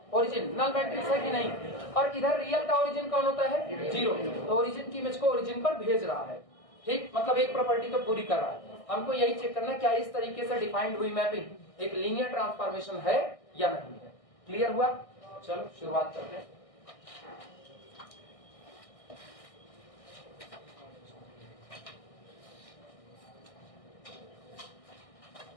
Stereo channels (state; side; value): late; right; 1.6 ms